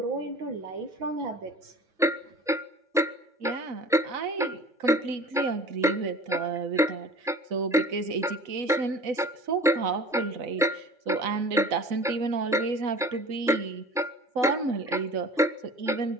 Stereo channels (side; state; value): both; normal; correlation 0.42